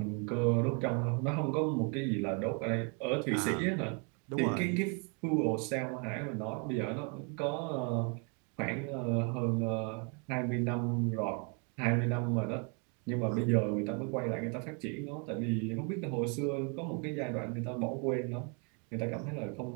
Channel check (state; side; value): quieter; left; 35.8 dB